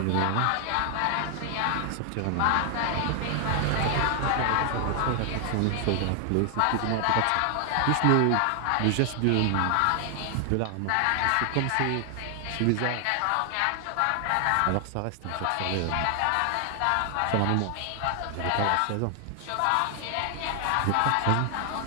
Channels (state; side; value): different; both; correlation 0.00